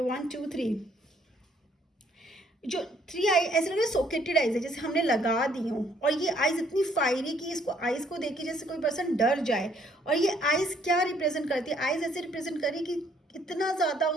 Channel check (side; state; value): both; normal; correlation 0.65